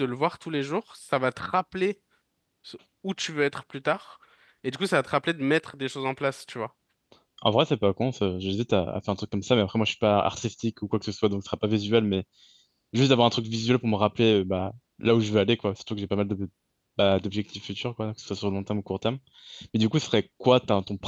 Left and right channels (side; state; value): both; identical; correlation 1.00